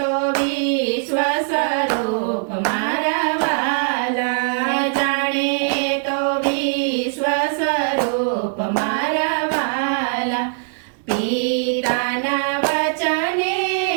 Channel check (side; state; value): left; silent; 59 dB below the other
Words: વિશ્વ સ્વરૂપ મારા વાલા, જાણે તો વિશ્વ સ્વરૂપ મારા વાલા, પિતાના વચને